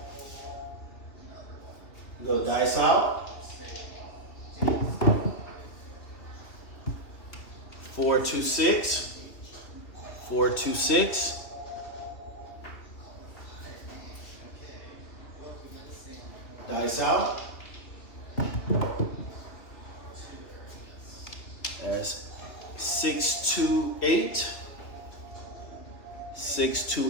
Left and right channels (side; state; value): right; late; 2.6 ms